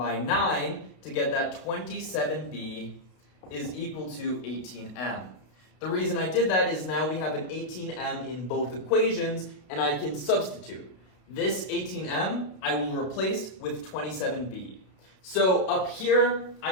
9 to get that 27b is equal to 18m. The reason I did that is now we have an 18m in both equations, and I can substitute. This 18m I will replace with 27b. So up here,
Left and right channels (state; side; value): late; right; 32 ms